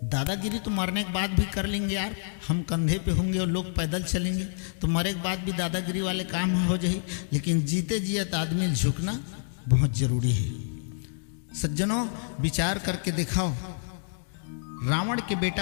दादागिरी तो मरने के बाद भी कर लेंगे यार, हम कंधे पे होंगे और लोग पैदल चलेंगे तो मरे के बाद भी दादागिरी वाले काम हो जाए, लेकिन जीते जियत आदमी झुकना बहुत जरूरी है। सज्जनों, विचार करके दिखाओ, रावण के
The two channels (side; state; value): right; silent; digital silence